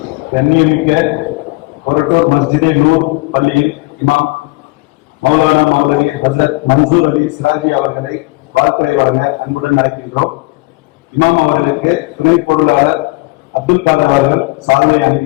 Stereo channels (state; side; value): quieter; right; 23.6 dB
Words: கண்ணியமிக்க கொரட்டூர் மஸ்ஜிதே நூர் பள்ளியில் இமாம் மௌலானா மௌலவி ஹசரத் மன்சூர் அலி சிராஜி அவர்களை வாழ்த்துறை வழங்க அன்புடன் அழைக்கின்றோம். இமாம் அவர்களுக்கு துணை பொருளாளர் அப்துல் காதர் அவர்கள் சாதனை